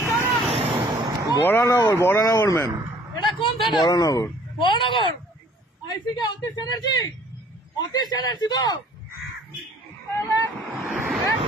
বরানগর, বরানগর ম্যাম। এটা কোন থানা? বরানগর। বরানগর আইসি কে অতীশ চ্যাটার্জি? অতীশ চ্যাটার্জি তো? একদম না,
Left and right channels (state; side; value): normal; both; correlation 0.55